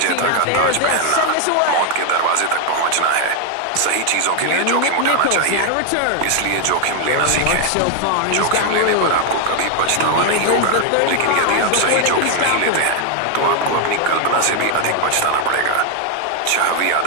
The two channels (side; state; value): both; different; correlation 0.01